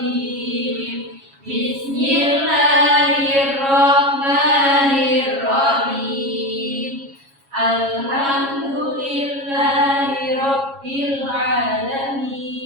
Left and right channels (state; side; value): late; left; 7.3 ms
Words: Bismillahirrahmanirrahim. Alhamdulillahi rabbil